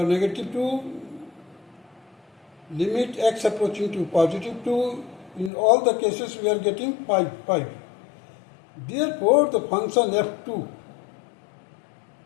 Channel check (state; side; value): drops out; right; at 5.5 s